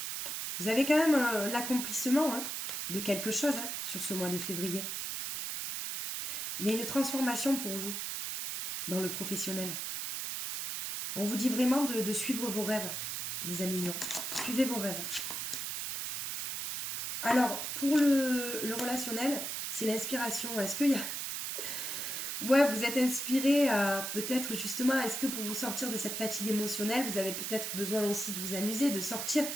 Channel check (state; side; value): noise; right; hiss, 3 dB below the sound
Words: Vous avez quand même l'accomplissement de quelque chose sur ce mois de février. Il y a une transformation pour vous dans le professionnel. On vous dit vraiment de suivre vos rêves, les amis lions. Suivez vos rêves. Alors, pour le relationnel, c'est l'inspiration. Est-ce qu'il y a... Ouais, vous êtes inspiré peut-être justement, est-ce que pour vous sortir de cette fatigue émotionnelle, vous avez peut-être besoin aussi de vous amuser, de sortir.